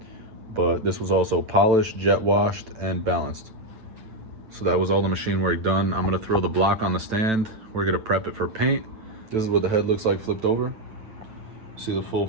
But this was also polished, jet washed, and balanced. So that was all the machine work done. I'm gonna throw the block on the stand. We're gonna prep it for paint. This is what the head looks like flipped over. See the full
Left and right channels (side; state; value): left; late; 9.0 ms